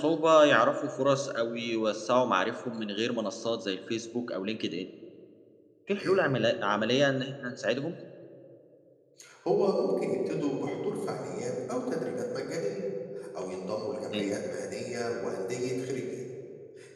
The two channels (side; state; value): both; identical; correlation 1.00